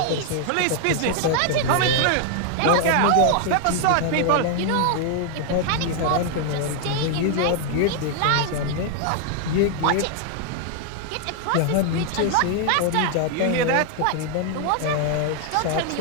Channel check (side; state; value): both; different; correlation 0.00